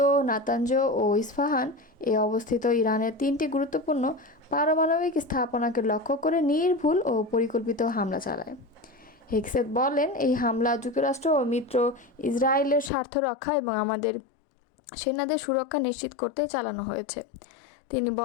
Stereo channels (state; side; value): drops out; right; at 12.9 s